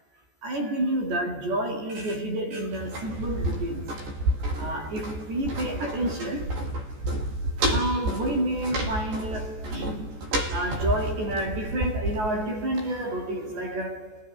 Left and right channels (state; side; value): late; left; 14 ms